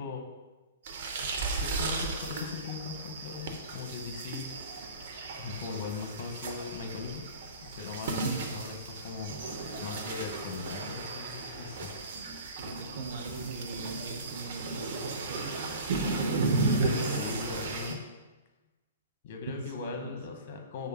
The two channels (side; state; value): both; inverted; correlation -0.40